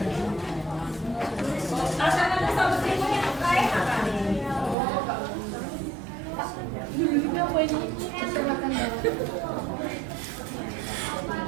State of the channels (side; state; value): left; drops out; at 4.8 s